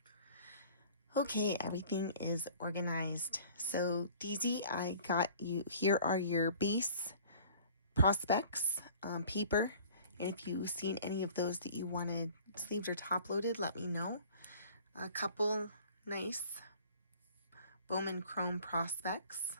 Okay, everything is organized. So DZ, I got you, here are your base prospects paper. And if you've seen any of those that you wanted sleeved or top loaded, let me know. A couple nice Bowman Chrome prospects.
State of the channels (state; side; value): inverted; both; correlation -0.49